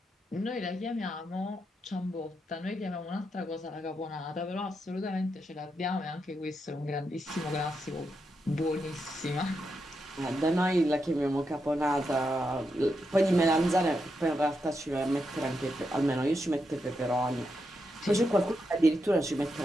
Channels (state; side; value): normal; both; correlation 0.84